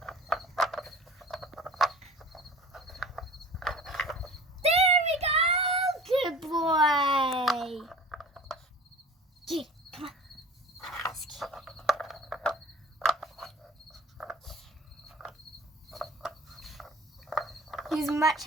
Good boy. Get it. Come on. Let's get it. He's much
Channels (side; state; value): both; normal; correlation 0.42